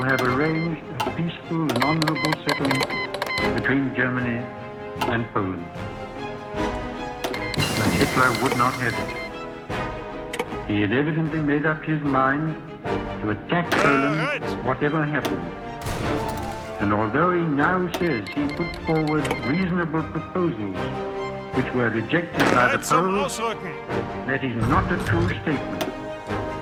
have arranged a peaceful and honorable settlement between Germany and Poland. But Hitler would not have it. He had evidently made up his mind to attack Poland whatever happened. And although he now says he put forward reasonable proposals which were rejected by the Poles, that is not a true statement.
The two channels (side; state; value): both; identical; correlation 1.00